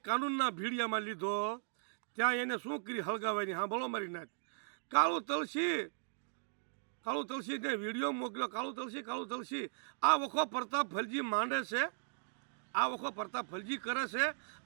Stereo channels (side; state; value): left; silent; digital silence